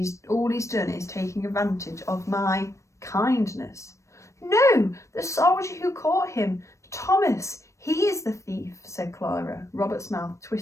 all he's done is taking advantage of my kindness. No, the soldier who caught him. Thomas, he is the thief, said Clara. Robert's mouth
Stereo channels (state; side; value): late; right; 0.15 ms